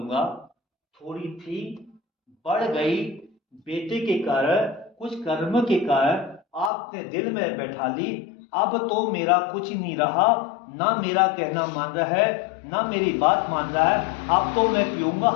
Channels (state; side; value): drops out; right; at 6.7 s